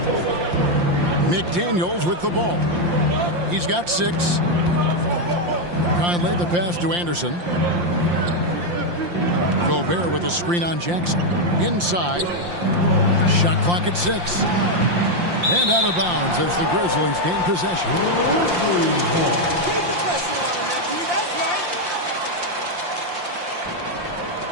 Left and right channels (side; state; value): left; late; 5.7 ms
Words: McDaniels with the ball. He's got 6. Conley the pass to Anderson. Gobert with a screen on Jackson. Inside. Shot clock at 6. And out of bounds as the Grizzlies gain possession. Keep the pressure on him, Anthony. That's